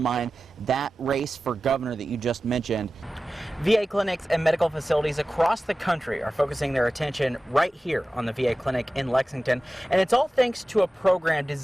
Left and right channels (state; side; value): normal; both; correlation 0.95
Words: that race for governor that you just mentioned. VA clinics and medical facilities across the country are focusing their attention right here on the VA clinic in Lexington, and it's all thanks to a program